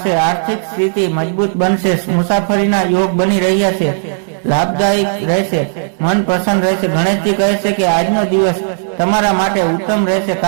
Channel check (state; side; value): silent; left; digital silence